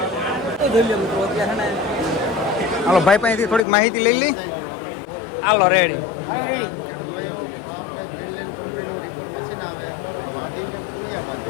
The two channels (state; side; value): drops out; right; at 3.7 s